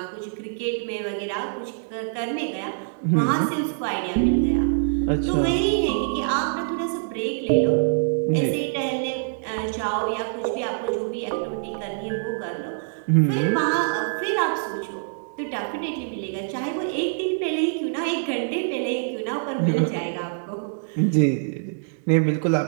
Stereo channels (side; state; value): left; silent; digital silence